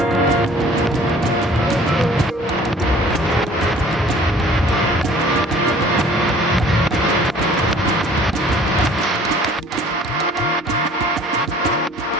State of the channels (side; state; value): both; normal; correlation 0.52